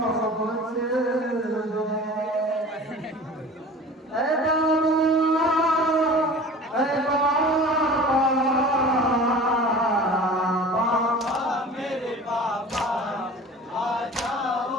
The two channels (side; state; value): both; normal; correlation 0.40